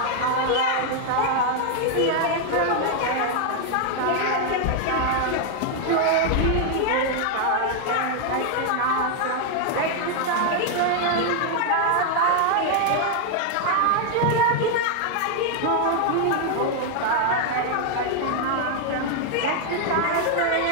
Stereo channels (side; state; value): both; different; correlation 0.00